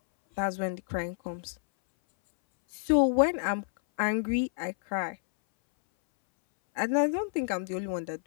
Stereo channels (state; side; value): silent; right; 59 dB below the other